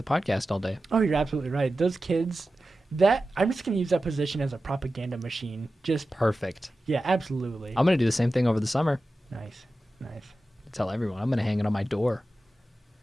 podcast all day. Oh, you're absolutely right. Those kids, I'm just going to use that position as a propaganda machine. Just, Perfect. yeah, absolutely. I'm going to do the same thing over the summer. Nice. Tell everyone. I'm going to hang it on my door.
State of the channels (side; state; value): both; normal; correlation 0.94